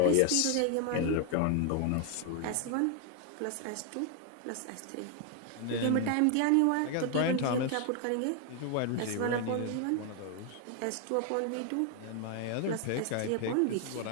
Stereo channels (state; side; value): different; both; correlation 0.00